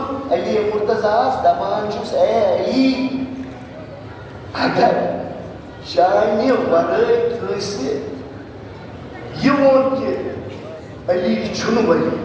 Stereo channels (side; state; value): both; identical; correlation 1.00